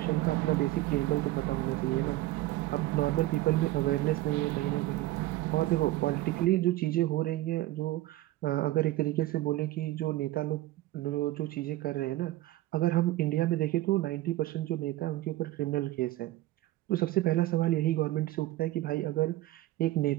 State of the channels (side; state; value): left; quieter; 16.3 dB